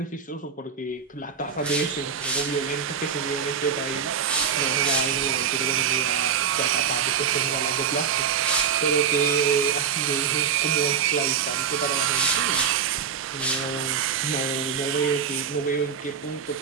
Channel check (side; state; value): left; quieter; 7.1 dB